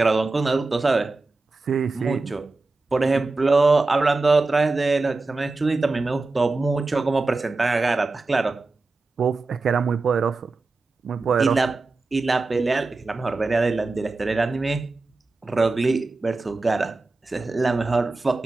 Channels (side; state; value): left; quieter; 3.5 dB